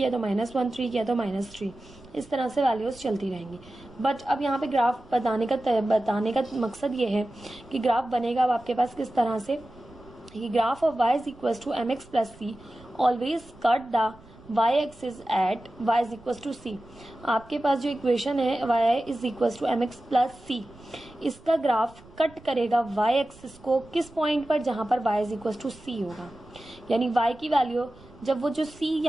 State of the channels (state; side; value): noise; right; rumble, 23 dB below the sound